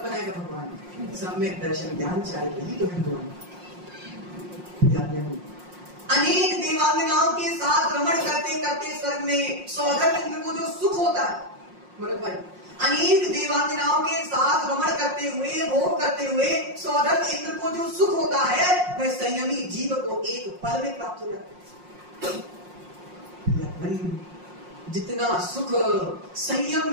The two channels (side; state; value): left; late; 5.6 ms